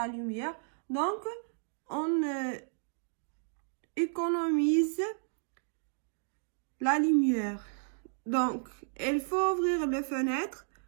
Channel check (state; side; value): silent; left; digital silence